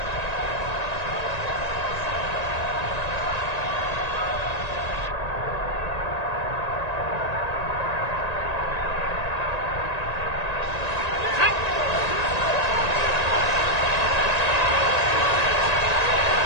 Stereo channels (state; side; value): late; right; 1.9 ms